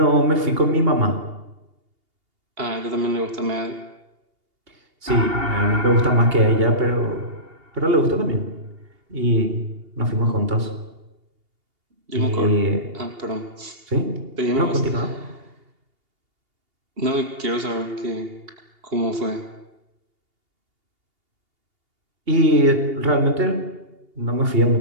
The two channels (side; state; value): left; late; 2.8 ms